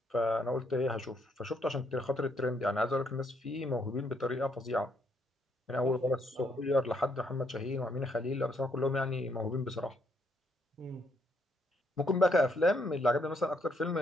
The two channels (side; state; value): both; normal; correlation 0.73